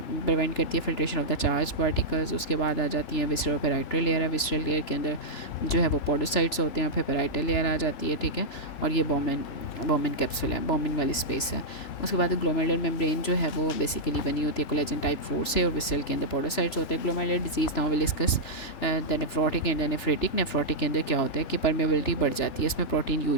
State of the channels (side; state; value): right; late; 3.4 ms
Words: प्रिवेंट करती है filtration of the charge particles. उसके बाद आ जाती हैं विसरल पेराइटल लेयर है, विसरल लेयर के अंदर जो है वो पोडोसाइट्स होते हैं, फिर पेराइटल लेयर आ जाती है, ठीक है, और ये बॉमन कैप्सूल है, बॉमन वाली स्पेस है। उसके बाद ग्लोमेरुलर मेम्ब्रेन जो है वो बेसिकली बनी होती है कोलेजन टाइप 4 से, और विसरल के अंदर पोडोसाइट्स होते हैं। Glomerular disease now will discuss the nephrotic and nephritic. Nephrotic के अंदर क्या होता है कि परमेबिलिटी बढ़ जाती है, इसमें प्रोटीन